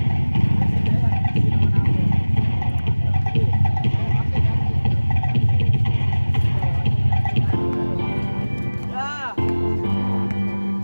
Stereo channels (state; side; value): inverted; both; correlation -1.00